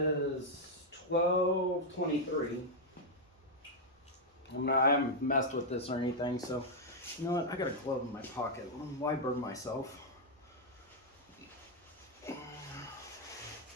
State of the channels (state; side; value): normal; both; correlation -0.02